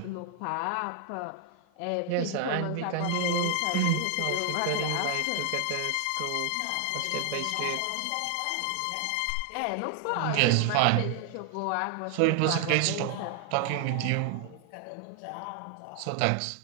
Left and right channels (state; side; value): different; both; correlation 0.00